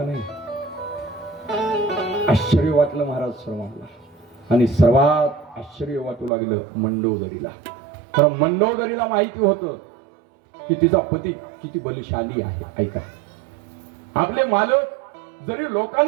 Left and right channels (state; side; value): drops out; left; at 6.3 s